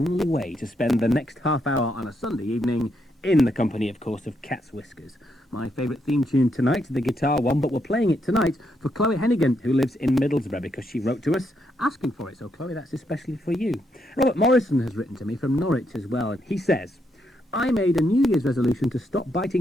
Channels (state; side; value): normal; both; correlation 0.78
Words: way to spend the next half hour on a Sunday evening in the company, of course, of Cat's Whiskers. My favourite theme tune tonight, the guitar one, but we're playing it tonight for Chloe Hennigan, who lives in Middlesbrough, because she wrote to us asking for it. So, Chloe, that's especially for you. Robert Morrison has written to me from Norwich as well. He says, I made a New Year's resolution to stop